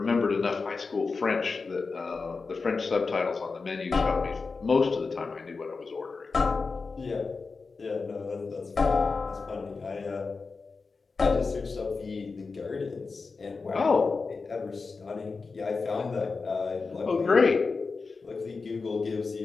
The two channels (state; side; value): quieter; right; 4.4 dB